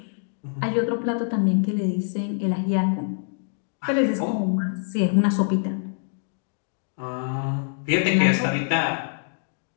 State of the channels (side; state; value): right; silent; digital silence